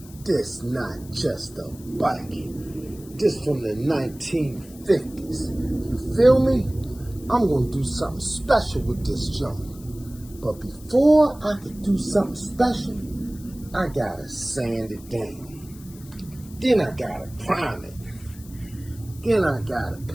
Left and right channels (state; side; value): noise; left; hiss, 21 dB below the sound